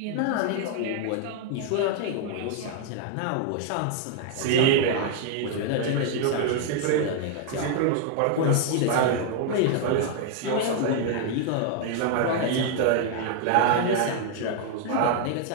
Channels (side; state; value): both; different; correlation 0.00